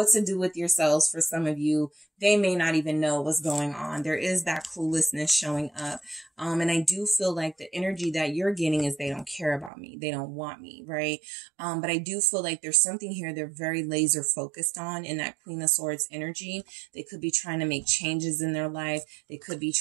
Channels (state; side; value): drops out; left; at 9.7 s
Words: to do with yourselves. For some of you, they may not even know what's going on. There is that cluelessness showing up. And I do feel like the energy that you're getting is they don't care about me. They don't want me, right? But I do feel like there's something here they're very laser focused on in that Queen of Swords energy. They could be trying to make changes in their life. They could be